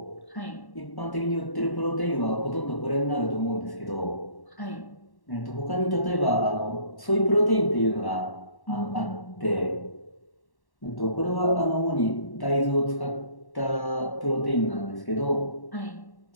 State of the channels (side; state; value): right; late; 1.1 ms